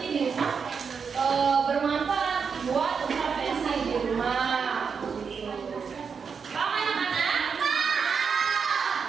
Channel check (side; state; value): left; quieter; 6.0 dB